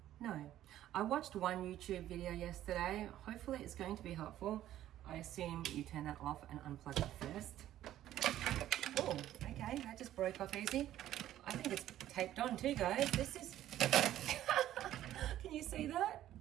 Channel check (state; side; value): quieter; left; 12.8 dB